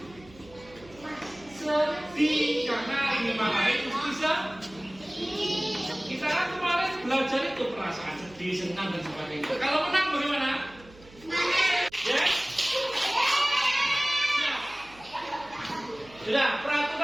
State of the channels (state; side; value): noise; right; hum, 23 dB below the sound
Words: sedih karena dimarahi. Bisa? Kita kan kemarin belajar itu perasaan sedih, senang dan sebagainya. Kalau menang bagaimana? Ya? Sudah,